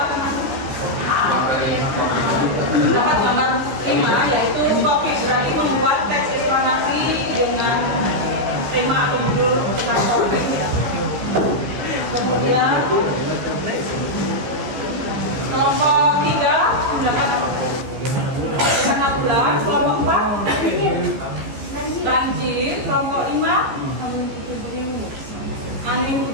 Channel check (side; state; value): left; late; 15 ms